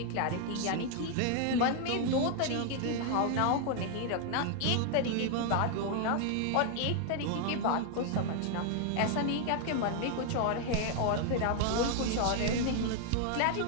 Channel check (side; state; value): both; different; correlation 0.00